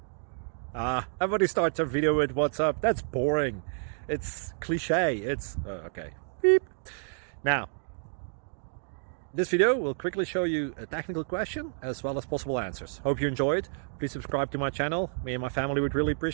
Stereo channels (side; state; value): left; silent; digital silence